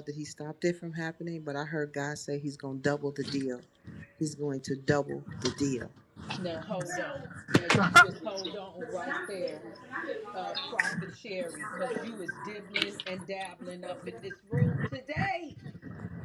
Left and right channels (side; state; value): both; identical; correlation 1.00